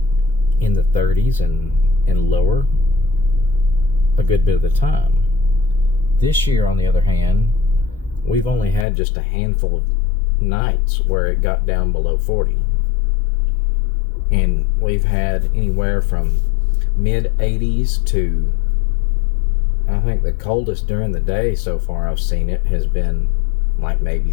in the 30s and lower a good bit of the time. This year, on the other hand, we've only had just a handful of nights where it got down below 40, and we've had anywhere from mid 80s to, I think the coldest during the day so far I've seen it has been like maybe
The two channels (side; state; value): right; drops out; at 8.8 s